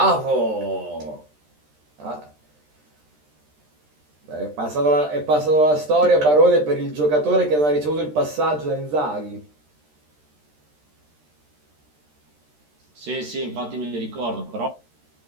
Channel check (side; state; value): left; late; 13 ms